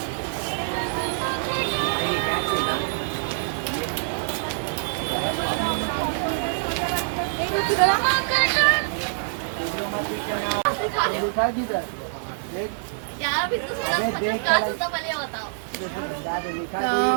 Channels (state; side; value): silent; left; digital silence